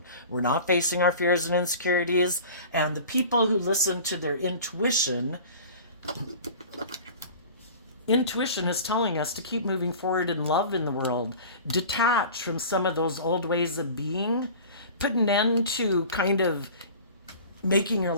we're not facing our fears and insecurities. And the people who listen to their intuition is telling us to keep moving forward in love in the world, detach from some of those old ways of being, put an end to kind of making your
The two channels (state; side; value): inverted; both; correlation -0.40